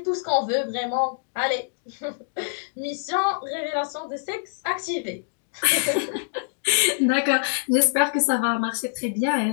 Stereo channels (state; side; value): silent; right; digital silence